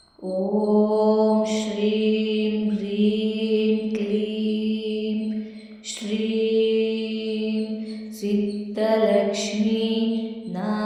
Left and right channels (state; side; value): identical; both; correlation 1.00